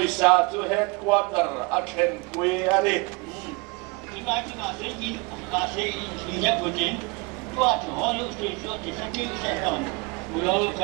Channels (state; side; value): quieter; left; 28.0 dB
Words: chu headquarter a then pui ani. Tinggal saya ingat begini. Tuat halu sesat disakiti setan. Mulai